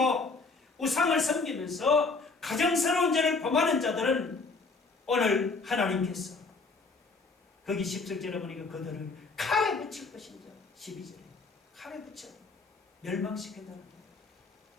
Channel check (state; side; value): quieter; right; 4.0 dB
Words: 우상을 섬기면서 가정스러운 죄를 범하는 자들은 오늘 하나님께서 거기 10절에 보니까 그들을 칼에 붙일 것인지 12절에 칼에 붙여 멸망시킨다는